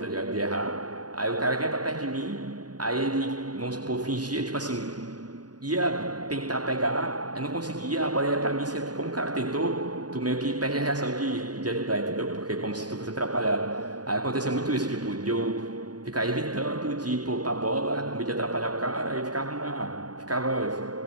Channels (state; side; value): late; left; 0.69 ms